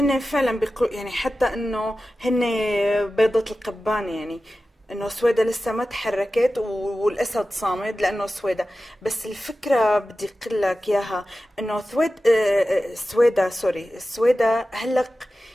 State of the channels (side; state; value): both; normal; correlation 0.94